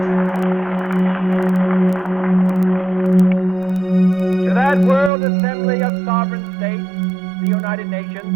To that World Assembly of Sovereign States, the United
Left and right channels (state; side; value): drops out; left; at 5.1 s